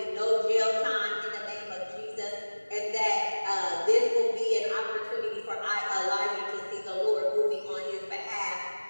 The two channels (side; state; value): both; inverted; correlation -1.00